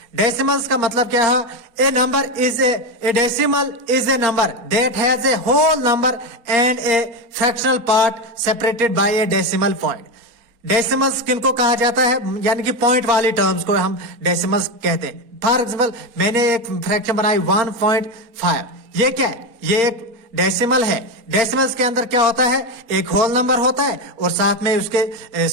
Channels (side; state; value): left; late; 4.2 ms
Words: डेसिमल्स का मतलब क्या है? A number is a decimal is a number that has a whole number and a fractional part separated by a decimal point. Decimals किनको कहा जाता है? यानी कि पॉइंट वाली टर्म्स को हम डेसिमल्स कहते हैं। फॉर एग्जाम्पल, मैंने एक फ्रैक्शन बनाई 1.5। ये क्या है? ये एक डेसिमल है। डेसिमल्स के अंदर क्या होता है? एक होल नंबर होता है और साथ में उसके